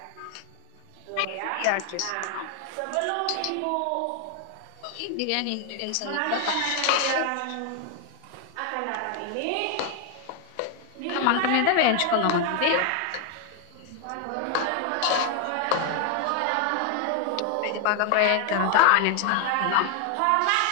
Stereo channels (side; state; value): both; different; correlation 0.01